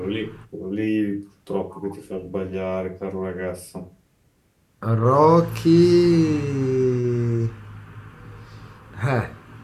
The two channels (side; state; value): both; identical; correlation 1.00